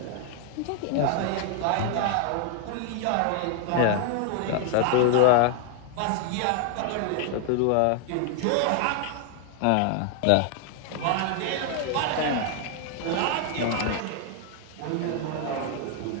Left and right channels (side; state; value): both; different; correlation 0.00